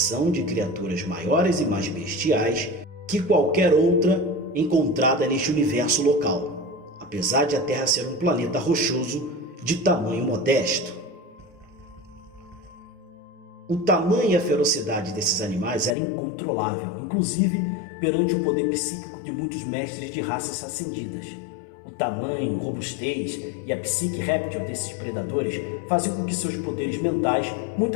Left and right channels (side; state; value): right; drops out; at 16.0 s